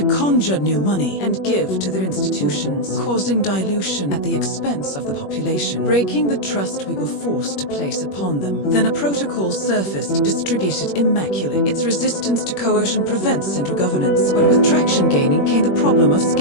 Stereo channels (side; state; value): right; late; 21 ms